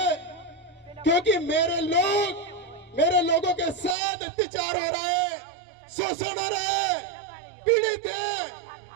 क्योंकि मेरे लोगों के साथ अत्याचार हो रहा है, शोषण हो रहा है, पीड़ित है,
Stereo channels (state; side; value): drops out; left; at 4.0 s